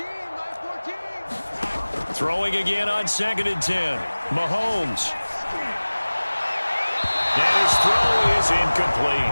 Mike 14. Throwing again on 2nd and 10. Mahomes. And his throw is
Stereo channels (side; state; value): both; inverted; correlation -1.00